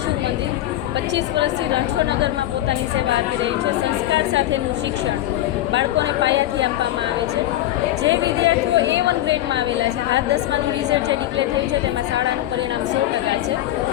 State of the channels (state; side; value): quieter; right; 14.1 dB